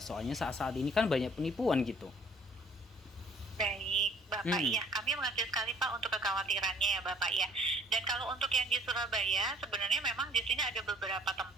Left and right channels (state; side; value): normal; both; correlation 0.58